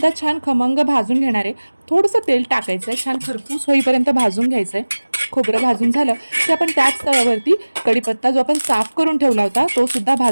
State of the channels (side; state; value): both; inverted; correlation -1.00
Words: छान खमंग भाजून घेणार आहे। थोडंसं तेल टाकायचं आहे, छान खरपूस होईपर्यंत भाजून घ्यायचं आहे। खोबरं भाजून झालं की आपण त्याच तव्यावरती कढीपत्ता जो आपण साफ करून ठेवला होता तो सुद्धा